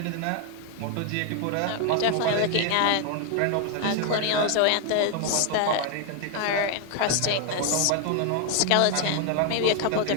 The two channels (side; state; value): both; different; correlation 0.01